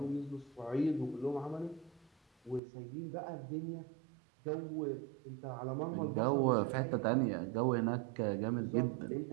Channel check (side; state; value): left; drops out; at 2.6 s